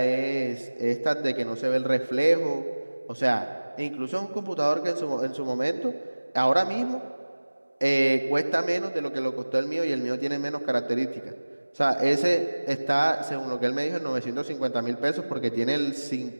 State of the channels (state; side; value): inverted; both; correlation -1.00